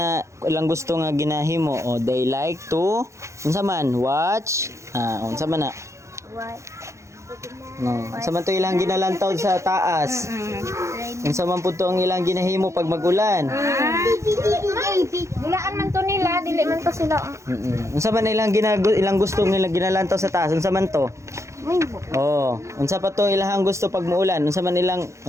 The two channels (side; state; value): left; late; 0.14 ms